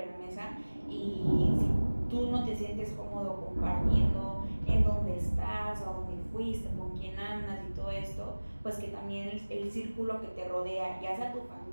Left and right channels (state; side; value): inverted; both; correlation -1.00